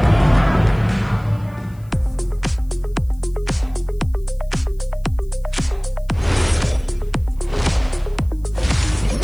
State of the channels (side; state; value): left; noise; hiss, 30 dB below the sound